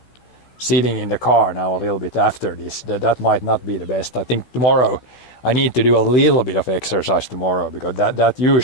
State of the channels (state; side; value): late; right; 16 ms